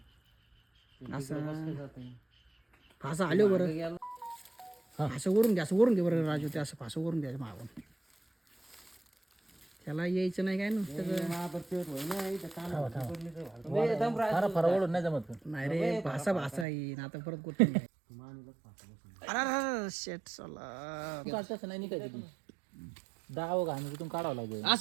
असं फासा आलो बरं असं वरून घे बरं राजू ते असं फासं वरून द्यायचं मागून त्याला यायचं नाही काय ना ओढून नाही जमत नाही रे भासा येईन आता परत गोष्ट अरे शेट चला तसं नाही निघायचं दाव घाण तिथून काढावं लागेल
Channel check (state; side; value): drops out; left; at 16.7 s